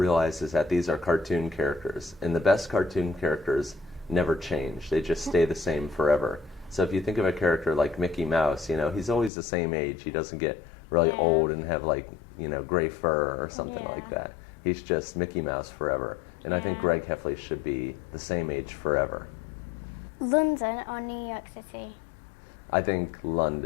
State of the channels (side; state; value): right; drops out; at 9.3 s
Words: is that these are cartoon characters, and the best cartoon characters never change. They just stay the same forever. So if you think of a character like Mickey Mouse, you know, he's always the same age. He doesn't get really old and have, like, you know, gray fur or something like that. He's just Mickey Mouse forever. And I think Greg Heffley should be the same age forever. London or New York City? I think